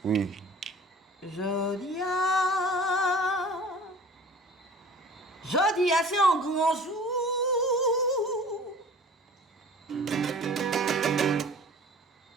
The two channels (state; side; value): normal; both; correlation 0.45